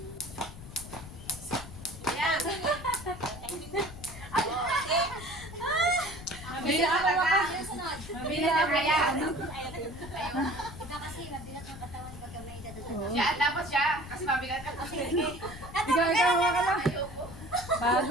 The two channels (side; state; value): left; noise; rumble, 14 dB below the sound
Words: Yan. Mabili ako talaga. Yung sunod. Mabili na kaya. Iba kasi mabigat ng katawan pagka may edad na. Siya, dapat siya. Kasi mabigat ka. Ikaw ka lang. Ayoko. Bago